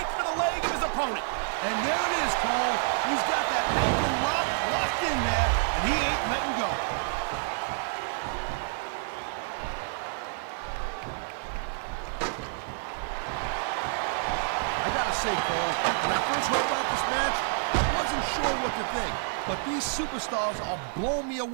for the leg of his opponent. And there it is, Cole. He's got that ankle locked in there, and he ain't letting go. I gotta say, Cole, when I first heard about this match, I wasn't sure what to think. But these superstars are blowing me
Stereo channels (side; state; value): left; silent; digital silence